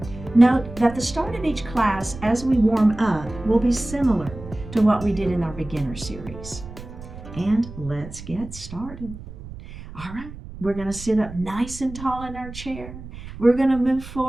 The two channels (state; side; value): noise; right; rumble, 14 dB below the sound